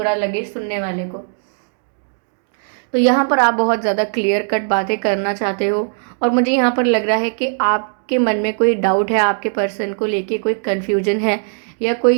लगे सुनने वाले को। तो यहाँ पर आप बहुत ज़्यादा क्लियर कट बातें करना चाहते हो, और मुझे यहाँ पर लग रहा है कि आपके मन में कोई डाउट है, आपके पर्सन को लेके कोई कन्फ्यूजन है, या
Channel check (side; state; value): left; silent; 67 dB below the other